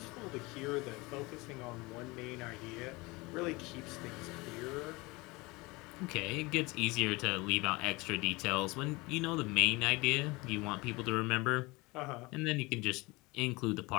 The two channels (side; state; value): right; quieter; 23.9 dB